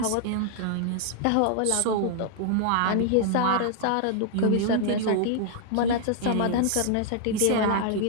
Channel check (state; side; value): different; both; correlation 0.00